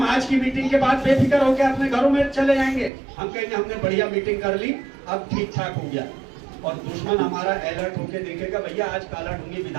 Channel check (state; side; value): drops out; left; at 2.9 s